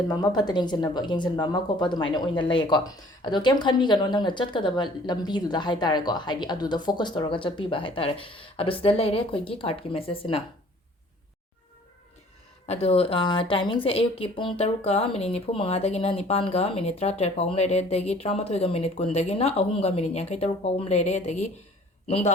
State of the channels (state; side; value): normal; both; correlation 0.52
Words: मा फत येंजनबा मा खोप दुमाइना ओइना लईको अदो केम खनबीगनो नंगना चटकदबा लंबीदुदा हाइतारेको है अदुदा फोकस तौरगा चटपीबा हाइतारे अदो सिदा लेरे अखोइगी कार्ड की मेसेज सिना अदो टाइमिंग से अयुक की पुंग तरुका मिनिट निफु मंगादगिना निपानगा मिनिट 13 फाउम लेरे दगी 13 मिनिट कुंदगिना अहुमगा मिनिट यांखै तरुक फाउम लेरे दगी नुंगदा